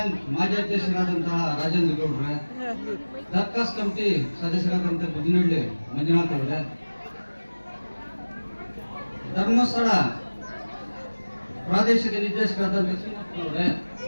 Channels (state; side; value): inverted; both; correlation -1.00